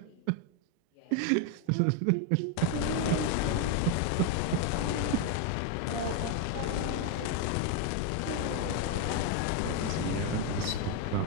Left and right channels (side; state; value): both; different; correlation 0.02